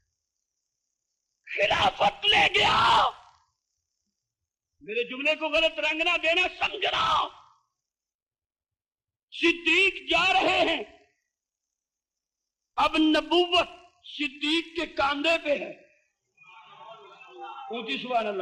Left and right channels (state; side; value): identical; both; correlation 1.00